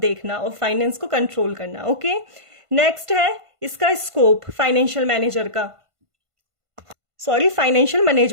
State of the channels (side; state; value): left; late; 1.5 ms